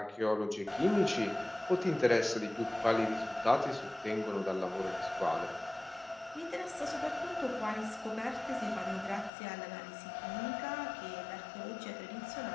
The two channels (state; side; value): drops out; right; at 9.3 s